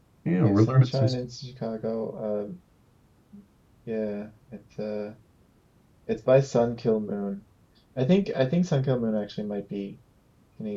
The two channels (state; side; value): identical; both; correlation 1.00